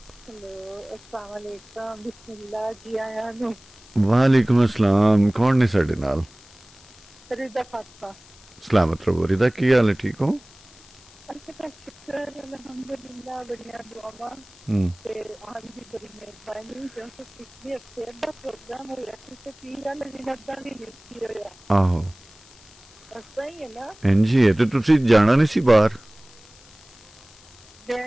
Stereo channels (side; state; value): left; noise; hiss, 24 dB below the sound